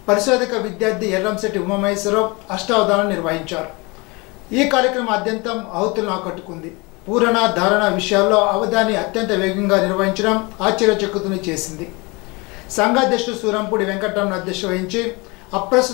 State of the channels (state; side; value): quieter; right; 26.8 dB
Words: పరిశోధక విద్యార్థి ఎర్రంశెట్టి ఉమామహేశ్వరరావు అష్టావధానం నిర్వహించారు. ఈ కార్యక్రమం అత్యంతం ఆహుతులను ఆకట్టుకుంది. పూరణ, ధారణ విషయాల్లో అవధాని అత్యంత వేగంగా నిర్వహించడం ఆశ్చర్యచకితుని చేసింది. సంఘాధ్యక్షుడు సూరంపూడి వెంకటరమణ అధ్యక్షత వహించి